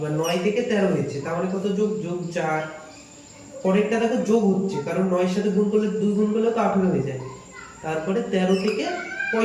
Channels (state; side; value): identical; both; correlation 1.00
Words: 9 থেকে 13 হয়েছে, তাহলে কত? যোগ, যোগ 4। পরেরটা দেখো যোগ হচ্ছে, কারণ 9 এর সাথে গুণ করলে 2 গুণ করলে তো 18 হয়ে যায়। তারপরে 13 থেকে